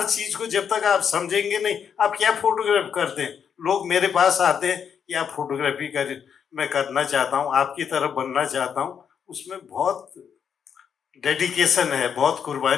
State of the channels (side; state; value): right; quieter; 7.5 dB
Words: चीज को जब तक आप समझेंगे नहीं, आप क्या फोटोग्राफ करते हैं। लोग मेरे पास आते हैं कि आप फोटोग्राफी कर, मैं करना चाहता हूँ, आपकी तरफ बनना चाहता हूँ। उसमें बहुत डेडिकेशन है, बहुत